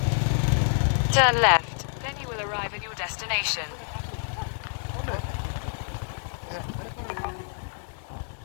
Turn left, then you will arrive at your destination.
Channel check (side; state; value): right; silent; digital silence